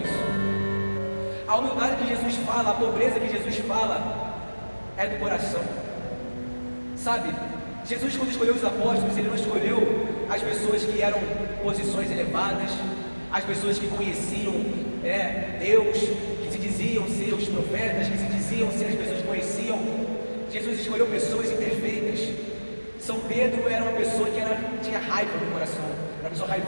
A humildade que Jesus fala, a pobreza que Jesus fala, é do coração. Sabe, Jesus, quando escolheu os apóstolos, ele não escolheu as pessoas que eram posições elevadas, as pessoas que conheciam Deus, que se diziam ser os profetas, que se diziam ser as pessoas que conheciam. Jesus escolheu pessoas imperfeitas. São Pedro era uma pessoa que tinha raiva no coração, era uma pessoa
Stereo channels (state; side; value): inverted; both; correlation -1.00